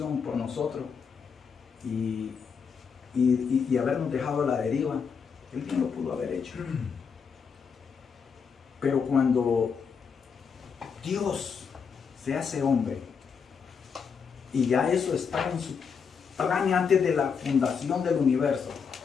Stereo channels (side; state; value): right; quieter; 6.2 dB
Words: por nosotros y habernos dejado a la deriva? Él bien lo pudo haber hecho. Pero cuando Dios se hace hombre, y ya eso está en su plan antes de la fundación del universo,